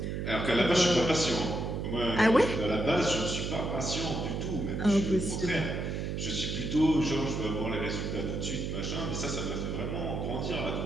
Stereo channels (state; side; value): noise; right; hum, 3 dB below the sound